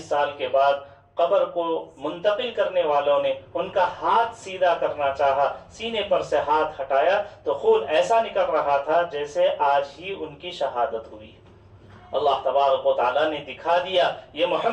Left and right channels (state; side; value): identical; both; correlation 1.00